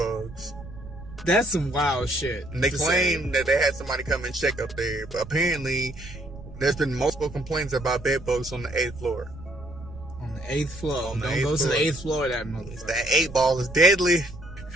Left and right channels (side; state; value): right; noise; rumble, 15 dB below the sound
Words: That's some wild shit. And they claim that they had somebody come and check up there, but apparently there's been multiple complaints about bed bugs on the 8th floor. On the 8th floor. Don't go to the 8th floor of that motherfucker. That 8 ball is deadly.